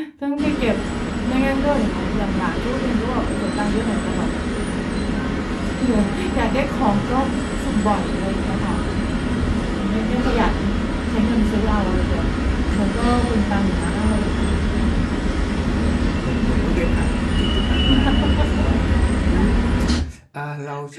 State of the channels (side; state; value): both; identical; correlation 1.00